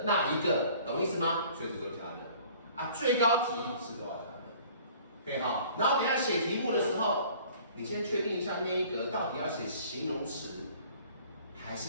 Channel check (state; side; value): inverted; both; correlation -0.51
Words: 那一个，懂意思吗？所以是都加的。啊，最高题是都要加的。可以哈。然后等一下写题目的时候，你先确定一下那一格到底要写形容词，还